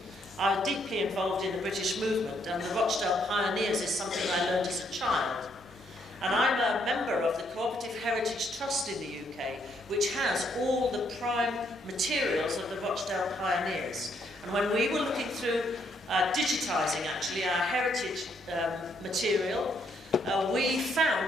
I'm deeply involved in the British movement, and the Rochdale Pioneers is something I learned as a child. And I'm a member of the Cooperative Heritage Trust in the UK, which has all the prime materials of the Rochdale Pioneers. And when we were looking through digitising actually our heritage material, we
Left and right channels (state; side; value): normal; both; correlation 0.72